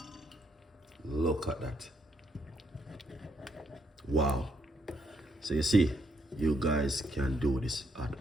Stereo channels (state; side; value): normal; both; correlation 0.75